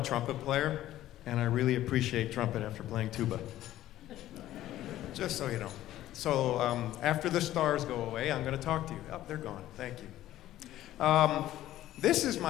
player, and I really appreciate trumpet after playing tuba. Just so you know. So after the stars go away, I'm going to talk to you. Oh, they're gone. Thank you. This is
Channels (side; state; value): right; quieter; 13.9 dB